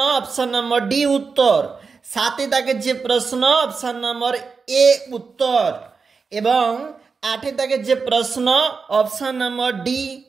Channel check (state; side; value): quieter; left; 5.0 dB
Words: অপশন নম্বর ডি উত্তর। 7-এর দাগের যে প্রশ্ন অপশন নম্বর এ উত্তর এবং 8-এর দাগের যে প্রশ্ন অপশন নম্বর ডি